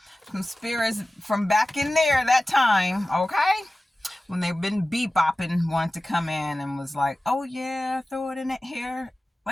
Some spirits from back in there that time, okay? When they've been bebopping, wanted to come in and was like, oh yeah, throw it in the air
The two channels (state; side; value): normal; both; correlation 0.96